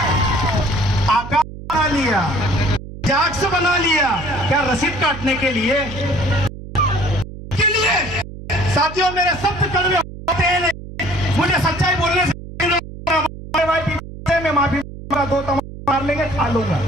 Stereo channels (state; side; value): noise; right; hum, 13 dB below the sound